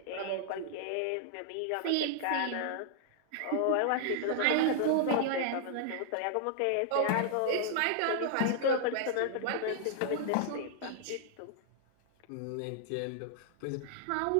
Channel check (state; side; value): different; both; correlation -0.01